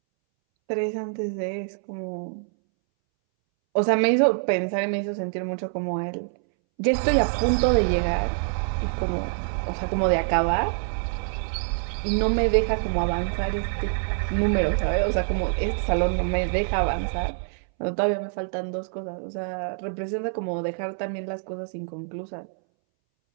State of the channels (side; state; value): left; silent; 61 dB below the other